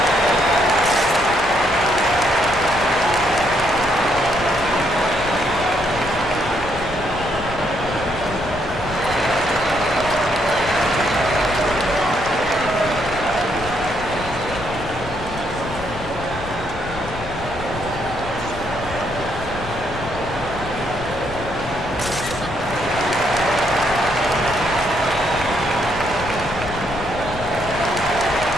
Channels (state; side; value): noise; left; rumble, 13 dB below the sound